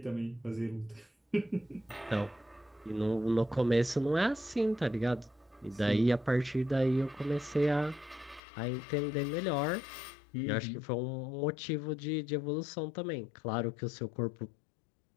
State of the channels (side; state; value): right; drops out; at 8.4 s